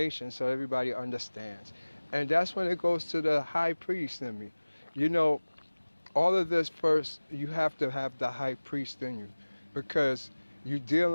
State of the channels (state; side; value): inverted; both; correlation -1.00